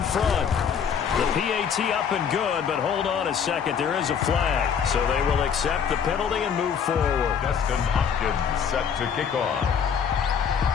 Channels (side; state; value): right; quieter; 7.2 dB